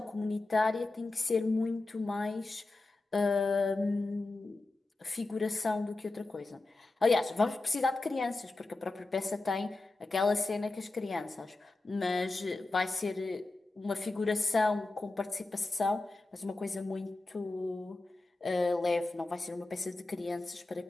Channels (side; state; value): right; quieter; 3.2 dB